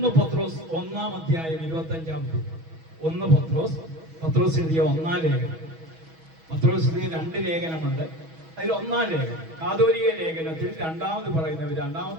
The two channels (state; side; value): late; left; 6.2 ms